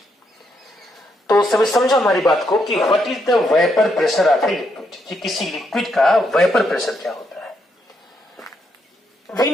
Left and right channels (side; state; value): both; normal; correlation 0.78